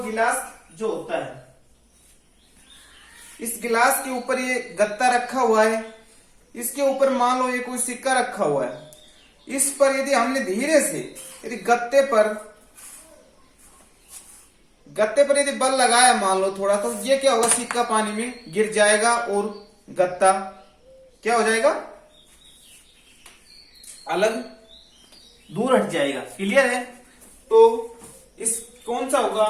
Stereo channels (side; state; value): both; identical; correlation 1.00